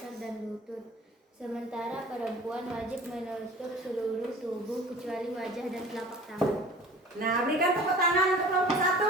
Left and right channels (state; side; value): normal; both; correlation 0.42